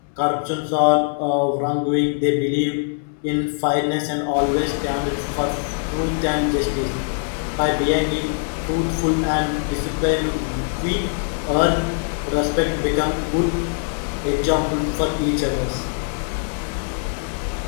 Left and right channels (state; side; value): silent; right; 61 dB below the other